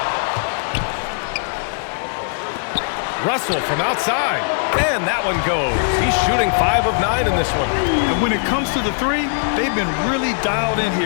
Russell from outside, and that one goes. He's shooting 5 of 9 in this one. And when it comes to the three, they've been really dialed in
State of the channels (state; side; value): silent; right; digital silence